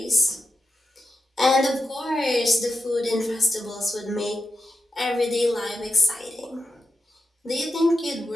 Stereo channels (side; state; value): both; normal; correlation 0.90